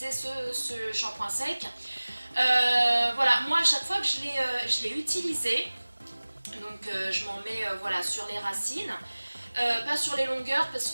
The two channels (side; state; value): both; inverted; correlation -1.00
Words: ce shampoing sec. Voilà, moi à chaque fois que je l'ai utilisé, donc je m'en mets voilà, sur les racines, pas sur les longueurs parce